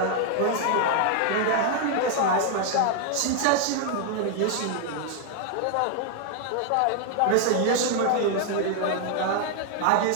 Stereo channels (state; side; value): different; both; correlation 0.00